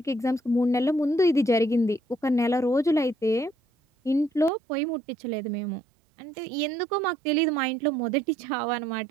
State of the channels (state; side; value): drops out; left; at 4.5 s